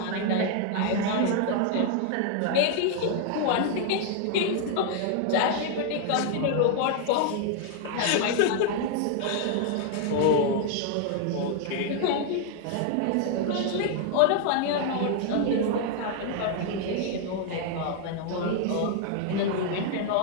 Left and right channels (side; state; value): both; different; correlation 0.00